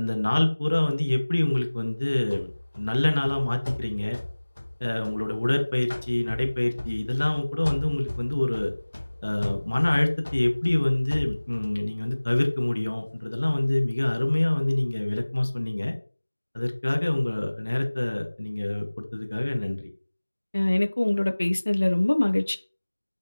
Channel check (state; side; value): inverted; both; correlation -1.00